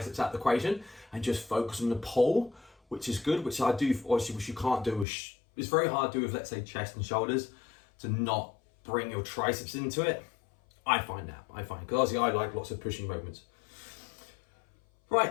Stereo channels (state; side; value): drops out; right; at 5.1 s